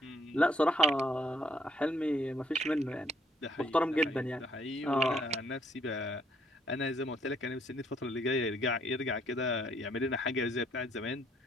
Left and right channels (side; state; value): both; normal; correlation 0.67